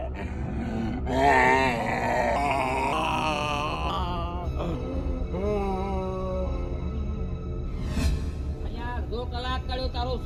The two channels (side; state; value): both; identical; correlation 1.00